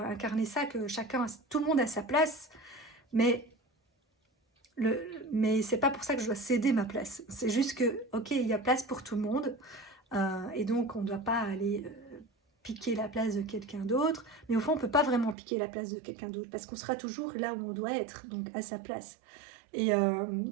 ça, que tout le monde a sa place. Mais mais c'est pas pour ça que je dois céder ma place. C'est juste que, ok, il y a place pour tout le monde, et donc on ne doit pas aller piquer la place de quelqu'un d'autre. Mais au fond, on peut pas vraiment piquer la place de quelqu'un d'autre parce qu'on sera toujours là où on doit être, donc à sa place. Et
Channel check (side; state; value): left; drops out; at 15.4 s